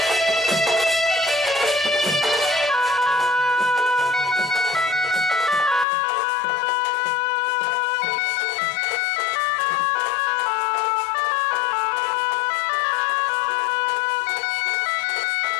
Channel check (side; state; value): right; drops out; at 5.9 s